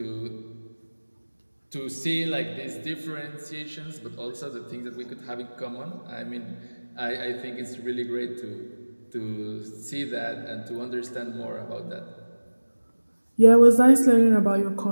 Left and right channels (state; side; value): inverted; both; correlation -1.00